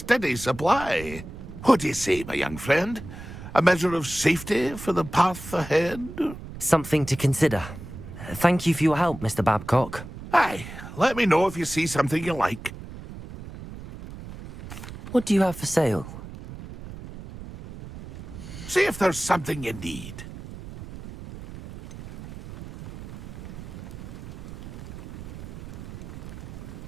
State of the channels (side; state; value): right; noise; rumble, 12 dB below the sound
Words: supply. What do you say, my young friend? A measure of safety for the path ahead? Something to consider. Thank you for your help, Mr. Babcock. Aye, let me know if you see something you like. What do you have for sale? See if there's something you need.